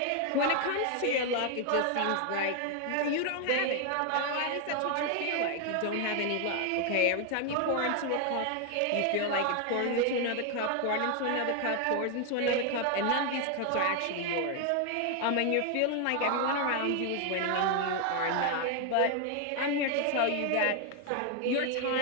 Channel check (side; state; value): both; different; correlation 0.00